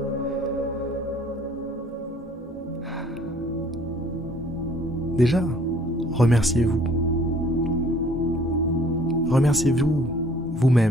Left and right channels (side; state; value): both; normal; correlation 0.56